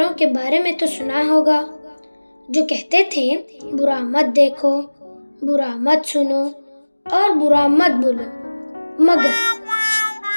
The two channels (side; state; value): both; inverted; correlation -1.00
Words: के बारे में तो सुना होगा जो कहते थे बुरा मत देखो, बुरा मत सुनो और बुरा मत बोलो। मगर